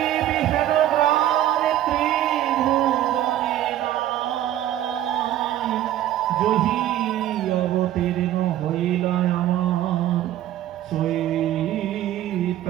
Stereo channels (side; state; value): left; quieter; 12.7 dB